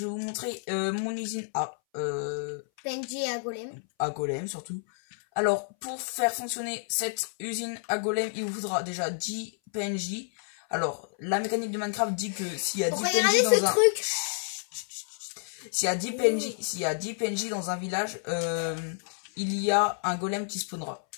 vous montrer mon usine à PNJ à Golem. à Golem surtout. Alors pour faire fonctionner cette usine à Golem, il vous faudra déjà 10 PNJ. Alors la mécanique de Minecraft dit que s'il y a 10 PNJ dans un truc. s'il y a 10 PNJ, s'il y a 10 PNJ dans un village, il y a un golem qui spawnera.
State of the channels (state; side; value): silent; right; 58 dB below the other